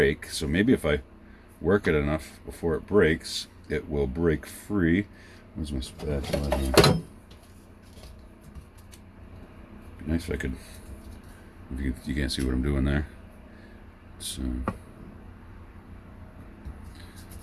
so maybe if I work it enough before it breaks, it will break free. Where's my spatula here? Be nice if I could. If you can't see what I'm doing there. So I'm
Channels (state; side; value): identical; both; correlation 1.00